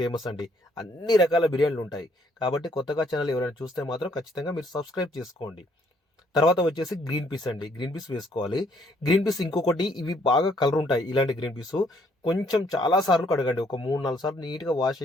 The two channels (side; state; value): both; normal; correlation 0.67